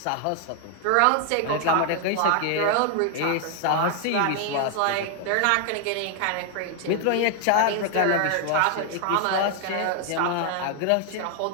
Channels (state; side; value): different; both; correlation 0.00